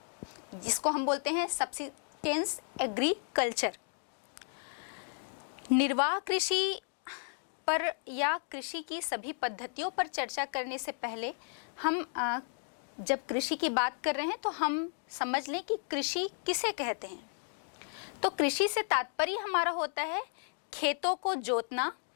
जिसको हम बोलते हैं सब्सिस्टेंस एग्रीकल्चर। निर्वाह कृषि पर या कृषि की सभी पद्धतियों पर चर्चा करने से पहले हम जब कृषि की बात कर रहे हैं तो हम समझ लें कि कृषि किसे कहते हैं। तो कृषि से तात्पर्य हमारा होता है खेतों को जोतना,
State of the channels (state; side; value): silent; right; 55 dB below the other